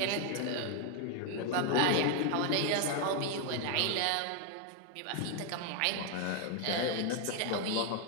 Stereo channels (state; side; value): different; both; correlation 0.01